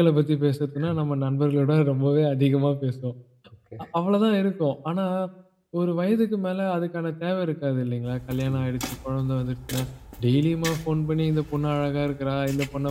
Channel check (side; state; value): both; identical; correlation 1.00